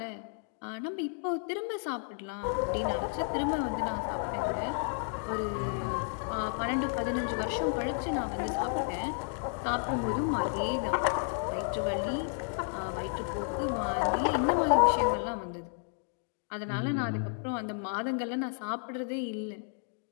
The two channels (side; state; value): right; silent; 56 dB below the other